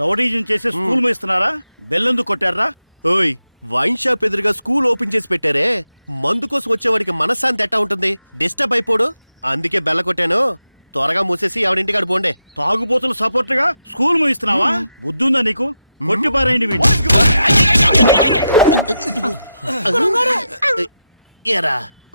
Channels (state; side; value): inverted; both; correlation -0.86